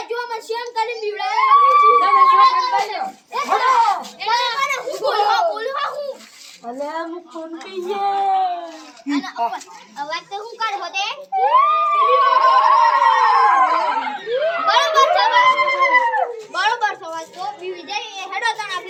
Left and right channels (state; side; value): identical; both; correlation 1.00